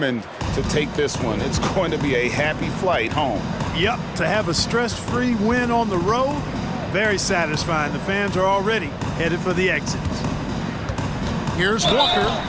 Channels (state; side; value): identical; both; correlation 1.00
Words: to take this one. It's going to be a happy flight home. Yep, to have a stress-free win on the road, very satisfying. The fans are already headed for the exits. Here's Walker,